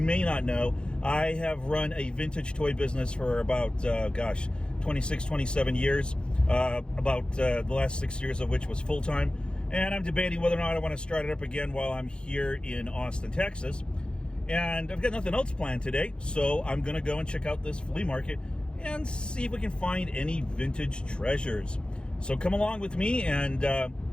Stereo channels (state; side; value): late; right; 0.053 ms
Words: not know, I have run a vintage toy business for about, 26, 27 years, about the last 6 years of which was full-time. And I'm debating whether or not I want to start it up again while I'm here in Austin, Texas. And I've got nothing else planned today, so I'm going to go and check out this flea market and see if we can find any vintage treasures. So come along with me and